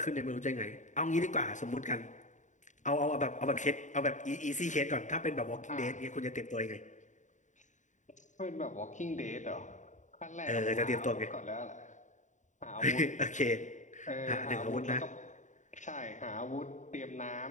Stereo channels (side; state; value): right; late; 0.36 ms